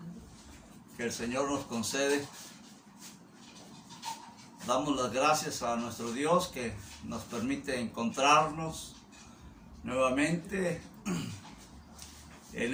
que el Señor nos concede. Damos las gracias a nuestro Dios que nos permite encontrarnos nuevamente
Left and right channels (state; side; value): identical; both; correlation 1.00